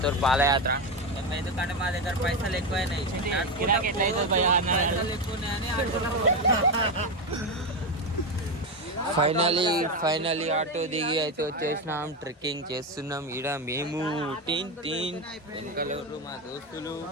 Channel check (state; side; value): normal; both; correlation 0.13